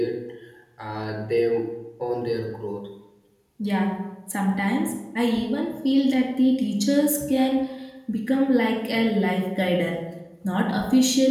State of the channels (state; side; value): identical; both; correlation 1.00